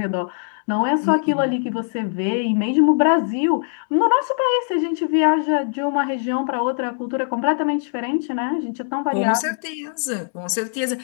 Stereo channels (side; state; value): right; silent; digital silence